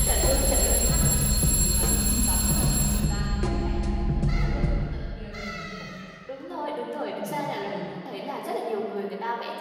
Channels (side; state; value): both; identical; correlation 1.00